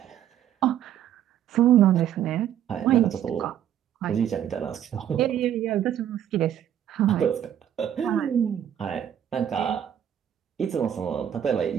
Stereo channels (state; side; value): quieter; left; 10.2 dB